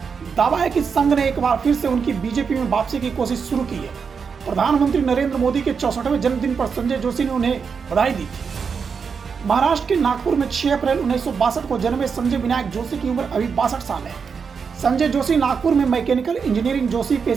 दावा है कि संघ ने एक बार फिर से उनकी बीजेपी में वापसी की कोशिश शुरू की है। प्रधानमंत्री नरेंद्र मोदी के 64वें जन्मदिन पर संजय जोशी ने उन्हें बधाई दी थी। महाराष्ट्र के नागपुर में 6 अप्रैल 1962 को जन्मे संजय विनायक जोशी की उम्र अभी 62 साल है। संजय जोशी नागपुर में मैकेनिकल इंजीनियरिंग जोशी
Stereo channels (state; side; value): quieter; left; 5.9 dB